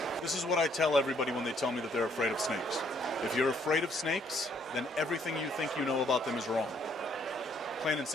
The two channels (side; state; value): both; normal; correlation 0.67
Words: This is what I tell everybody when they tell me that they're afraid of snakes. If you're afraid of snakes, then everything you think you know about them is wrong. Plain and